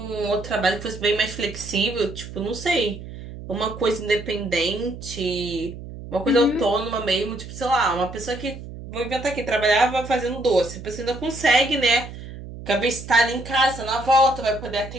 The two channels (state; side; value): noise; right; hum, 12 dB below the sound